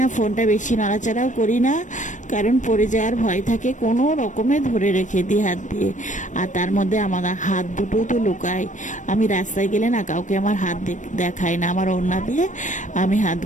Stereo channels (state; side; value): late; right; 0.36 ms